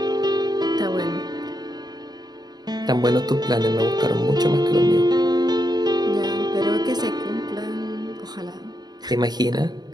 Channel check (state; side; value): late; left; 0.20 ms